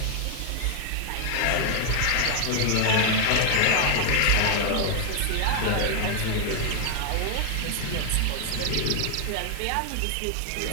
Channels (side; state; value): both; different; correlation 0.00